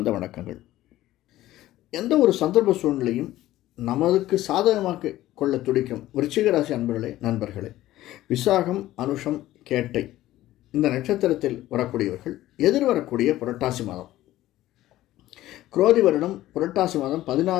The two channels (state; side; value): quieter; right; 15.1 dB